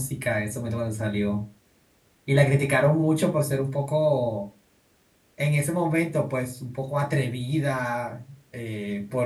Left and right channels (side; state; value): both; identical; correlation 1.00